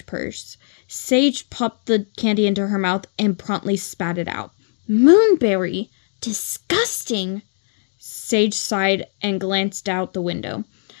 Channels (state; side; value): silent; right; digital silence